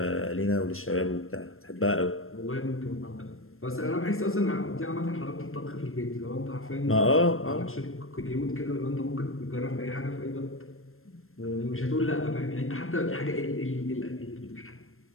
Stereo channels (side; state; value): right; late; 0.61 ms